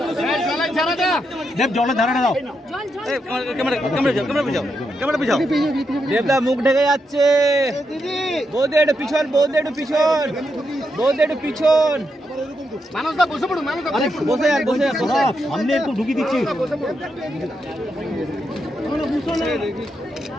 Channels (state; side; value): normal; both; correlation 0.83